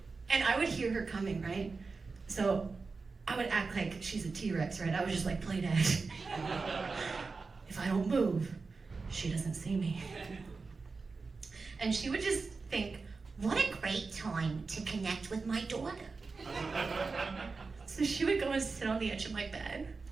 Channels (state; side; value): quieter; left; 4.3 dB